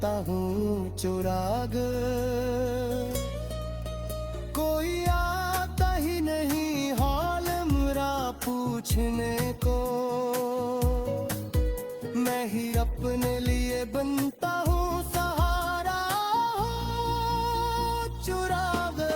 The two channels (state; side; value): identical; both; correlation 1.00